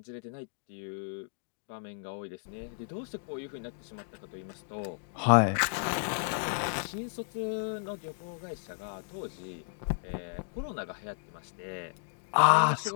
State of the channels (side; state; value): right; silent; digital silence